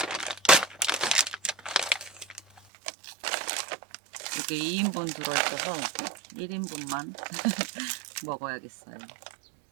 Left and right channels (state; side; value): drops out; left; at 2.6 s